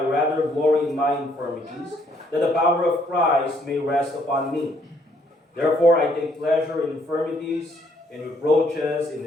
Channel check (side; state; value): both; normal; correlation 0.68